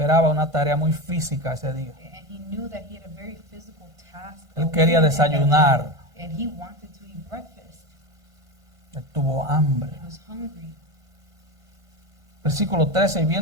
una tarea muy física ese día. and he knew that he had a very physical task. Él quería awaiting him that desayunar. day, and he wanted to eat breakfast. Él tuvo hambre. He was hungry. Versículo 13. Y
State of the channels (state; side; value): late; left; 1.5 ms